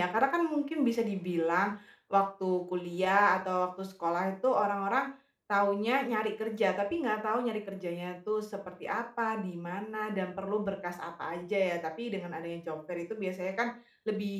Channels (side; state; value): both; identical; correlation 1.00